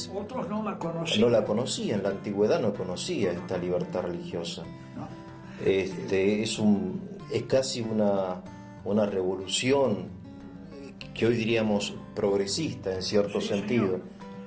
otros no la conocían. No la conocían, la antigüedad no conocía esta libertad religiosa. No. Es casi una revolución que hoy diríamos progresista en cierto sentido,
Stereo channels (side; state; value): both; identical; correlation 1.00